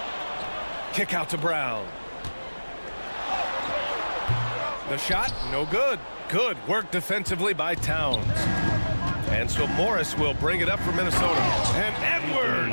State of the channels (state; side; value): inverted; both; correlation -1.00